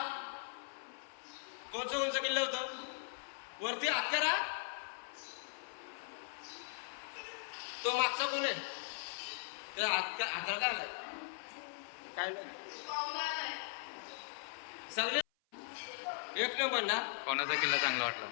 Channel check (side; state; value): right; silent; 51 dB below the other